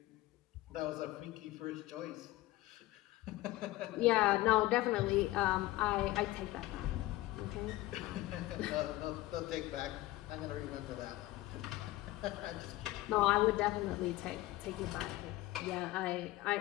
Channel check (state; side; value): quieter; right; 17.6 dB